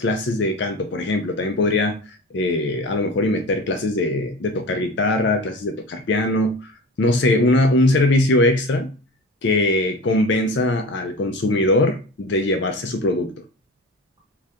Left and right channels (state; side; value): normal; both; correlation 0.32